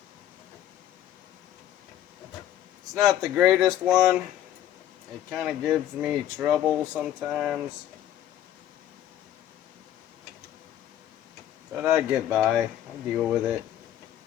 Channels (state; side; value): quieter; right; 11.8 dB